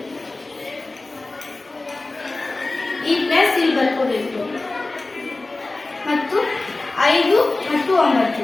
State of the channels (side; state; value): right; quieter; 3.1 dB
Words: ಈ ಪ್ಲಸ್ ಇಲ್ಲಿ ಬರ್ಕೋಬೇಕು ಮತ್ತು 5 ಮತ್ತು